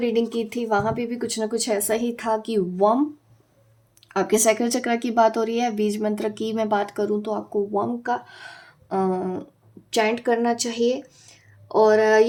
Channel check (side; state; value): both; identical; correlation 1.00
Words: की थी वहाँ पे भी कुछ ना कुछ ऐसा ही था कि वम, आपके सैक्रल चक्र की बात हो रही है। बीज मंत्र की मैं बात करूँ तो आपको वम का चैंट करना चाहिए। और